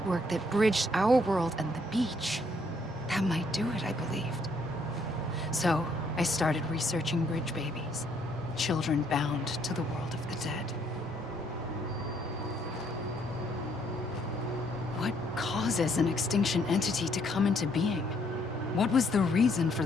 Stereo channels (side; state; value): both; normal; correlation 0.68